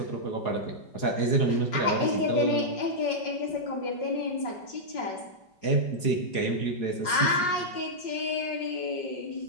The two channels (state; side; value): late; right; 4.8 ms